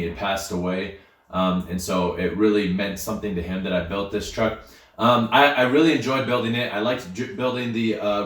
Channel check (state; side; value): identical; both; correlation 1.00